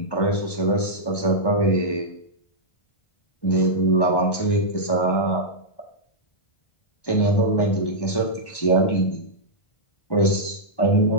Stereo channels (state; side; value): late; right; 1.1 ms